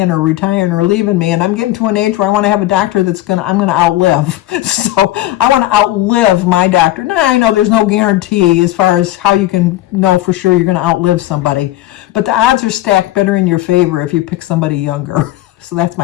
or retiring or leaving me. And I'm getting to an age where I want to have a doctor I'm going to outlive. So I want to outlive my doctor. Now, I know there's no guarantee as far as how you can know for sure you're going to outlive somebody, but the odds are stacked better in your favor if you pick somebody younger. So that's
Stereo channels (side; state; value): right; quieter; 15.6 dB